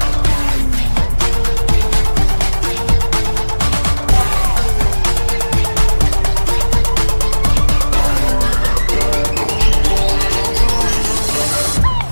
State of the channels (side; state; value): both; inverted; correlation -1.00